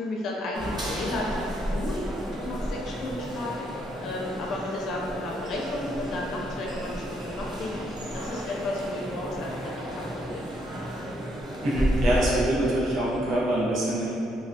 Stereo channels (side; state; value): both; normal; correlation 0.74